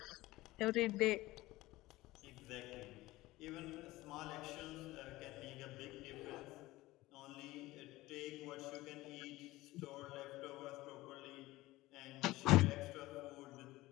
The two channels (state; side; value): quieter; right; 18.4 dB